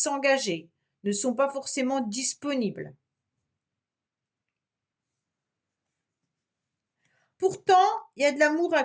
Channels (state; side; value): identical; both; correlation 1.00